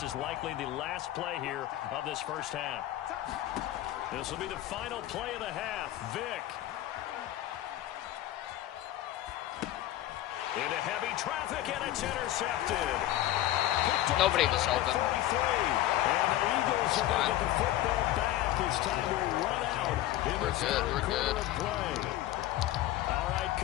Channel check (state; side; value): quieter; right; 14.2 dB